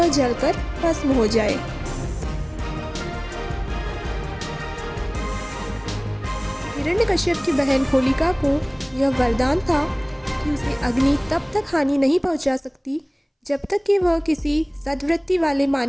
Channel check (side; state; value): both; identical; correlation 1.00